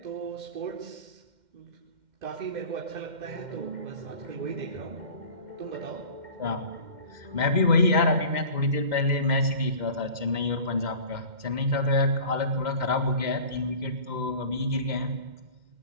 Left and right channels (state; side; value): late; left; 2.1 ms